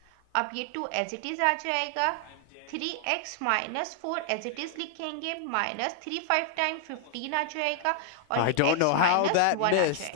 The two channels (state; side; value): different; both; correlation 0.00